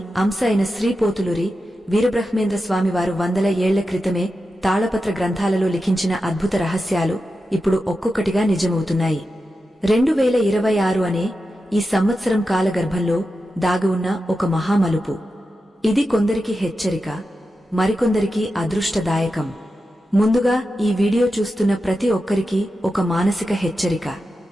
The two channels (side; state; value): both; normal; correlation 0.90